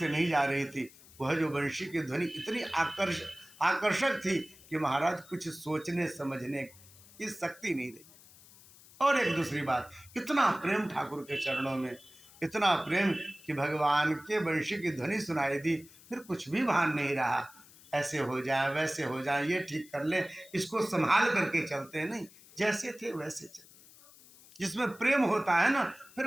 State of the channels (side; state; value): left; noise; hiss, 23 dB below the sound